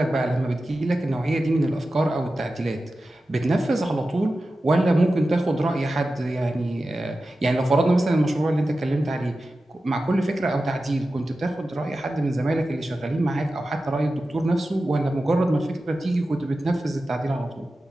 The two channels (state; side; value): normal; both; correlation 0.93